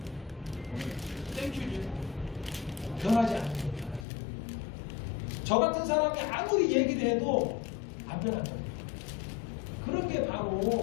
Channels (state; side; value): drops out; right; at 4.0 s